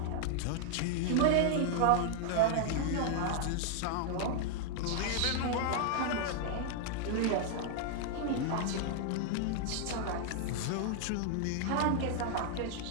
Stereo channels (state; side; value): different; both; correlation 0.00